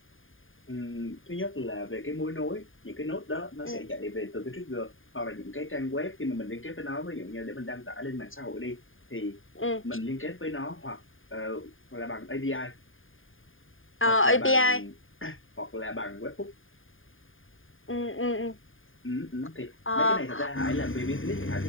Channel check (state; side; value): late; right; 0.59 ms